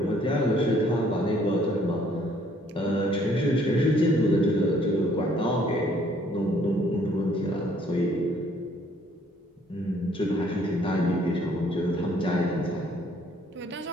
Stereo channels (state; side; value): normal; both; correlation 0.62